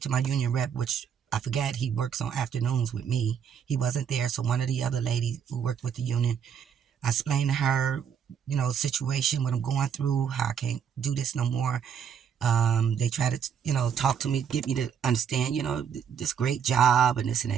to my union rep, which I forgot he works on afternoons with me. He wasn't there, so one of the other ladies who worked with the union, I explained to her, situation, what I'm going through, how I can't do this no more. They try to, talk to me, get me to understand, this great job and this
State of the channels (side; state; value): left; quieter; 7.7 dB